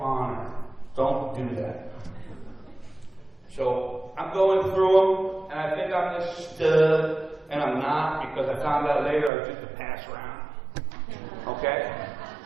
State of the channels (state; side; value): drops out; left; at 9.3 s